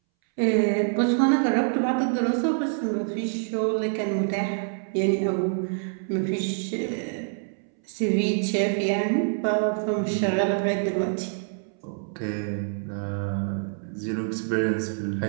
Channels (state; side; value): silent; left; 61 dB below the other